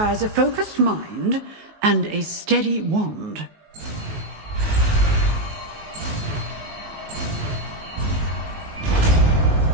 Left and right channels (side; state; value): left; late; 19 ms